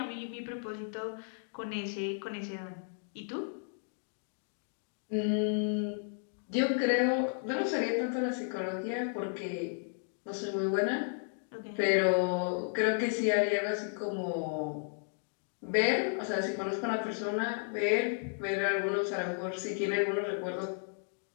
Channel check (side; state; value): right; silent; digital silence